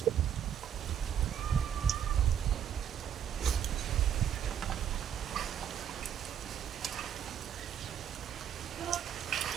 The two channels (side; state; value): left; quieter; 9.2 dB